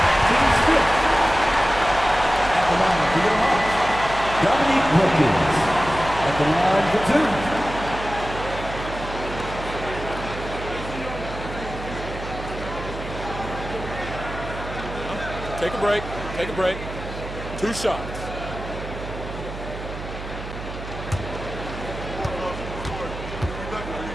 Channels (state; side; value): noise; right; hum, 9 dB below the sound